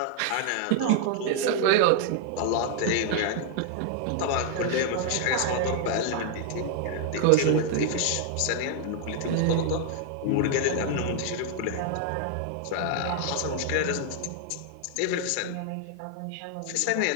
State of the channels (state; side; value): different; both; correlation 0.00